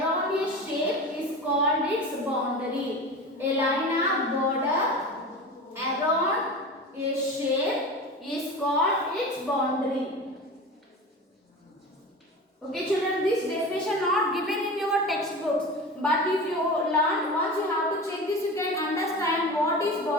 a shape is called its boundary. A line or border around a shape is called its boundary. Okay children, this definition not given in your textbooks, but if you learn once, you have to check this, you can understand what is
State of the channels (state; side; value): normal; both; correlation 0.31